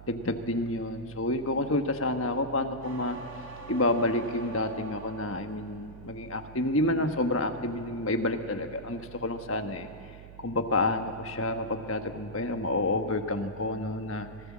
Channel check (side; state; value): right; noise; hum, 16 dB below the sound